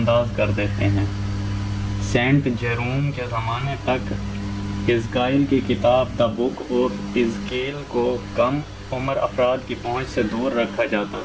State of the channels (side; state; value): both; identical; correlation 1.00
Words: کر دیتے ہیں۔ سینٹ جیروم کے زمانے تک حزقیال کی کتاب دا بک آف حزقیال کو کم عمر افراد کی پہنچ سے دور رکھا جاتا